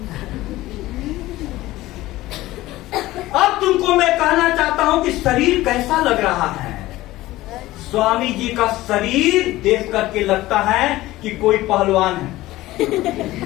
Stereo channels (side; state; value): right; quieter; 17.2 dB